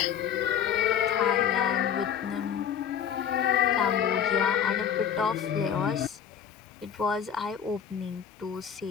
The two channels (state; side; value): quieter; right; 8.4 dB